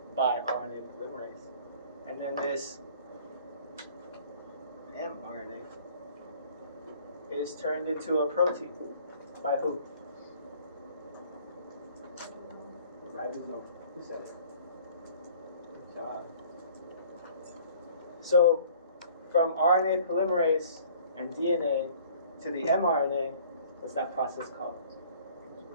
by RNA polymerase. And then this mRNA is turned into a protein. By who? Ribosome. Who said it? Good job. So, from RNA polymerase and DNA to the mRNA, what's that process called?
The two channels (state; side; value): inverted; both; correlation -0.53